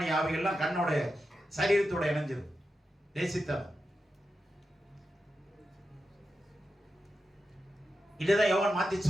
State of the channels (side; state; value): both; normal; correlation 0.89